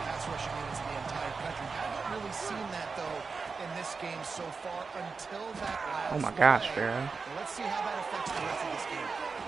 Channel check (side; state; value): left; quieter; 4.8 dB